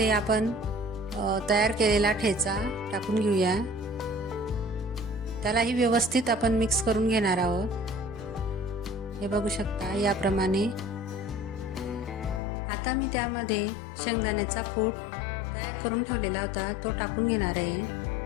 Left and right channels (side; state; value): right; drops out; at 12.4 s